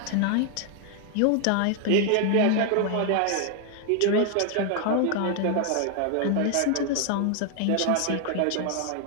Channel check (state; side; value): different; both; correlation 0.00